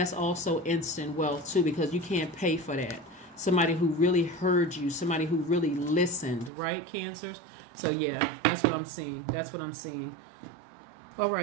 also instant wealth too, because you can't pay for that. Somebody who really heard you, somebody who really listened, right, Cancers? So yeah, that's what I'm seeing. That's what I'm seeing. All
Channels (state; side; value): drops out; left; at 6.5 s